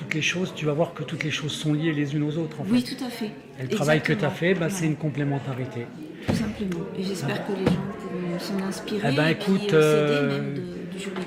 les choses, tu vas voir que toutes les choses sont liées les unes aux autres. En Oui, fait. tout à fait. Et le travail que tu as fait, Exactement. c'est une complémentarité. Tout simplement. Et j'espère que les gens pourront s'en inspirer Eh ben, et puis écoute, s'aider même du juridique.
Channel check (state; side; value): identical; both; correlation 1.00